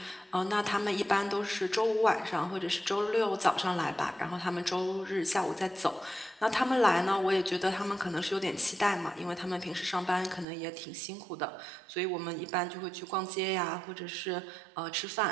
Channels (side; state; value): left; drops out; at 10.5 s